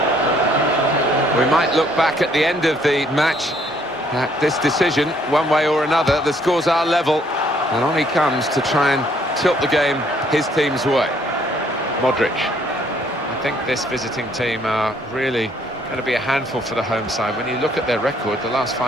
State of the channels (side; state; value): both; normal; correlation 0.65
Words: We might look back at the end of the match at this decision, one way or another. The scores are level, and on he comes to try and tilt the game his team's way. Modric. I think this visiting team are really going to be a handful for the home side. When you look at their record, the last